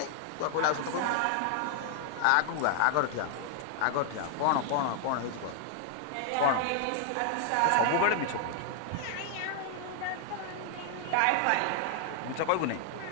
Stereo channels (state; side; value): different; both; correlation 0.00